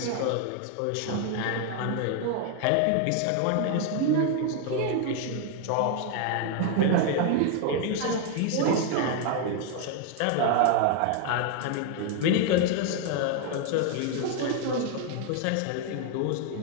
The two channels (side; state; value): both; different; correlation 0.01